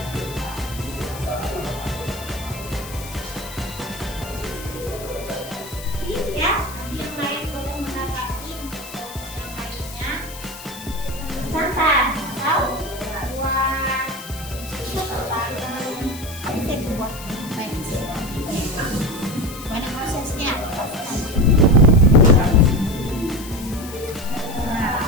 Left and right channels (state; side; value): noise; left; hiss, 14 dB below the sound